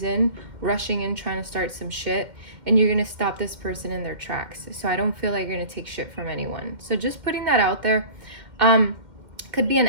in rushing in trying to start some shit, and you're gonna stop this person in their tracks. So I don't feel like you're gonna take shit from anyone. So just putting that out there. Could be an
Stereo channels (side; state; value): left; late; 2.1 ms